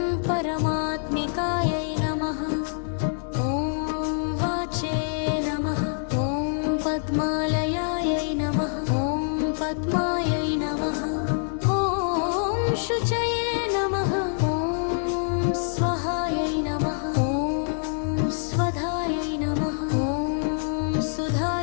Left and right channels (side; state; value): right; silent; digital silence